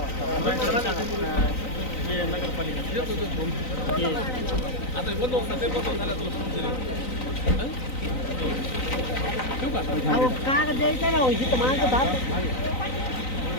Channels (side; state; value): right; late; 3.9 ms